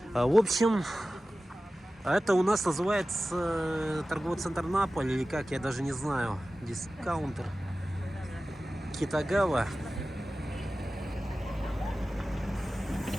В общем, это у нас называется торговый центр Наполь, или как, я даже не знаю. Дискаунтер Китагава.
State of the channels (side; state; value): both; normal; correlation 0.96